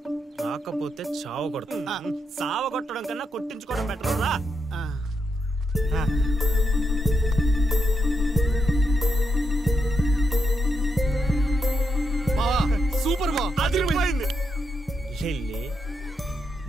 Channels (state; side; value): normal; both; correlation 0.81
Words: రాకపోతే చావ కొడతావు. సావ కొట్టడం కన్నా కొట్టించుకోవడం బెటర్ రా. సూపర్ బా, అదిరిపోయింది. లిల్లీ